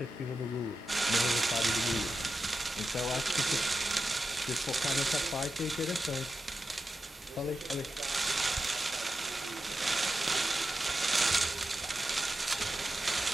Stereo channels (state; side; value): normal; both; correlation 0.90